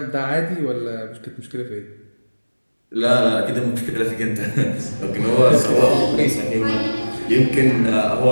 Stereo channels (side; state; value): both; inverted; correlation -1.00